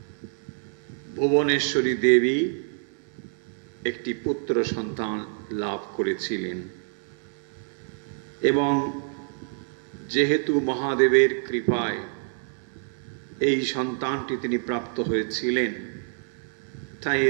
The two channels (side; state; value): left; silent; 60 dB below the other